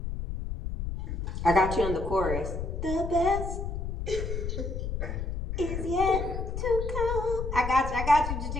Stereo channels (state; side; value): noise; left; rumble, 4 dB below the sound